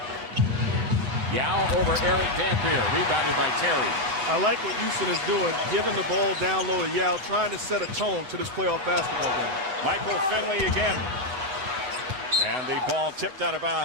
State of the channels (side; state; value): left; late; 7.9 ms